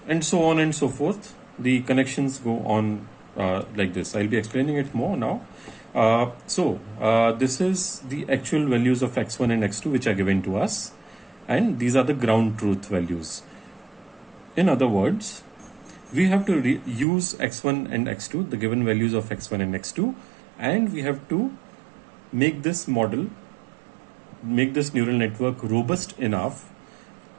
and so on and so forth. The connections go on like this. I'll be explaining it more now. This is the actual values of X1 and X2 which are given to us, and these are the ground truth values. In other words, we have to use X1 and X2, the given values of X1 and X2, and we have to make this model, make this neural network robust enough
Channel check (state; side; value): drops out; left; at 17.1 s